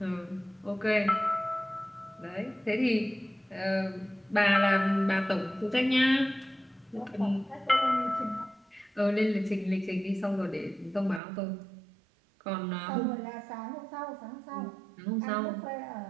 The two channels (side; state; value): left; drops out; at 11.2 s